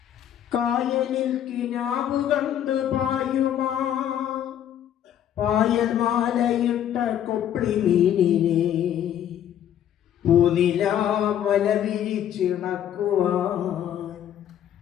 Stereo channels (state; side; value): quieter; right; 10.4 dB